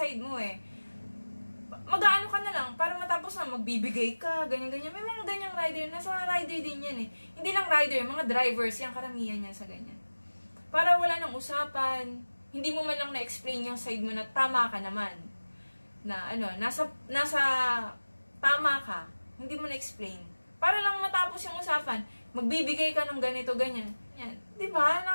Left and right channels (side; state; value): both; inverted; correlation -1.00